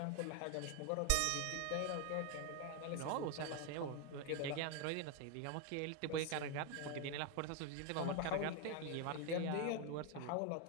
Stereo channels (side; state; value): both; different; correlation 0.01